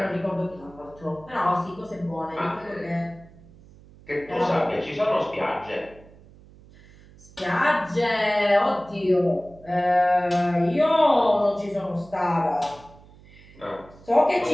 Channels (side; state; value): right; noise; hum, 23 dB below the sound